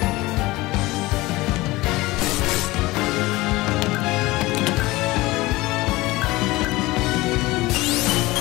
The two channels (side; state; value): right; quieter; 20.2 dB